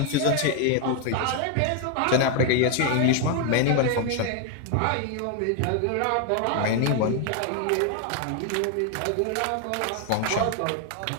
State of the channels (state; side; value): different; both; correlation 0.01